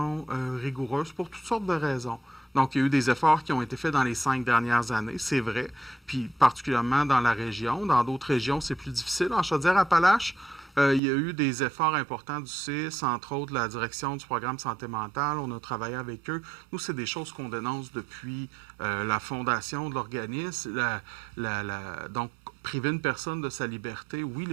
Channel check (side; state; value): left; drops out; at 11.0 s